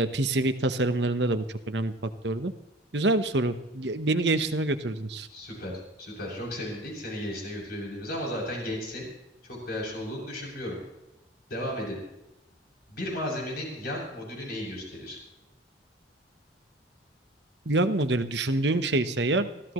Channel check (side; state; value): both; normal; correlation 0.41